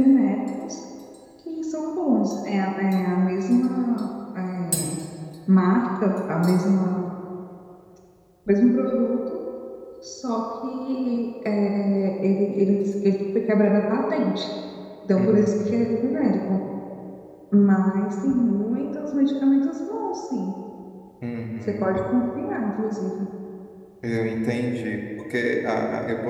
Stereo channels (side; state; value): both; identical; correlation 1.00